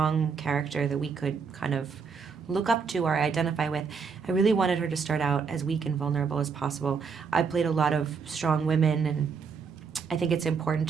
character that we could kind of look up to or identify with. I really wanted her to start out as weak and vulnerable as possible. I played a lot of strong women, and I think it's important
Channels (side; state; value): left; quieter; 5.6 dB